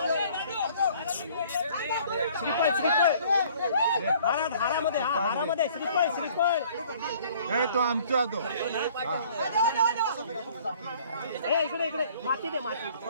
श्रीफळ श्रीफळ हारामध्ये हारामध्ये श्रीफळ श्रीफळ तो आमचा तो इकडे इकडे माती दे माती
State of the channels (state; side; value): inverted; both; correlation -0.55